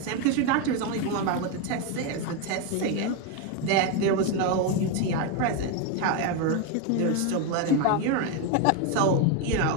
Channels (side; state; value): both; different; correlation 0.02